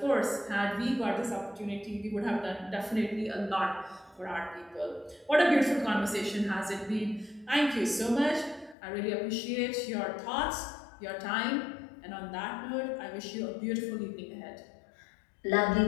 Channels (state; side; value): drops out; right; at 8.8 s